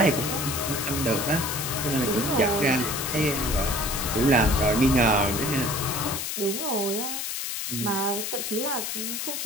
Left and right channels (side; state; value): left; noise; hiss, 3 dB below the sound